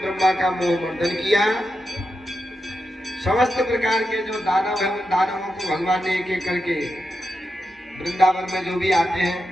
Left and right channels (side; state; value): both; normal; correlation 0.87